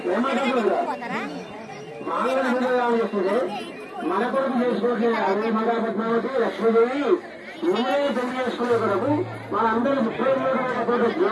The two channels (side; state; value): both; identical; correlation 1.00